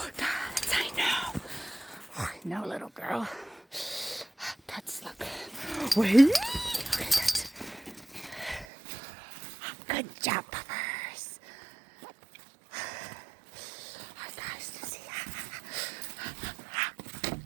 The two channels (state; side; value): drops out; left; at 8.7 s